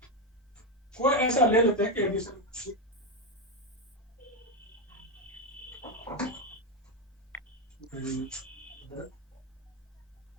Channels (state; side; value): normal; both; correlation 0.08